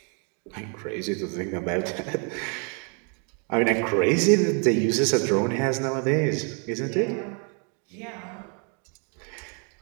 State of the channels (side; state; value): left; quieter; 37.8 dB